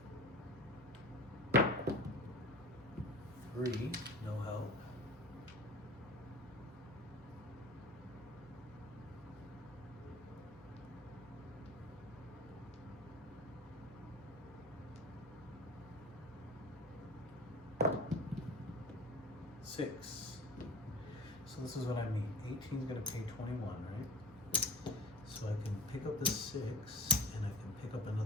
$3, no help. $6. So this is what I mean. 18 is going to pay 21, right? So I can pick up the 6 and I can pick up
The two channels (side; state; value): both; normal; correlation 0.39